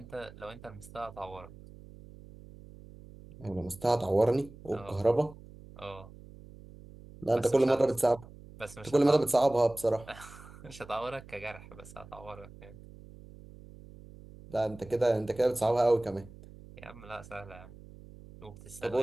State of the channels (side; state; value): right; noise; hum, 19 dB below the sound